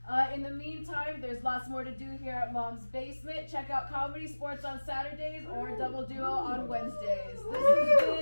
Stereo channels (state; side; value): inverted; both; correlation -1.00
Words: In the meantime, there's lots more to do here at Mom's Basement. Check out Comedy Sports on Saturdays or Double Duo on Wednesdays. This has